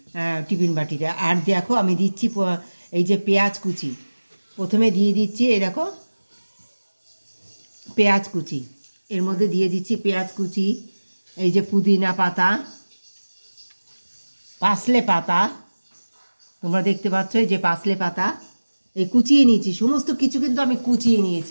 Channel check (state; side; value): inverted; both; correlation -1.00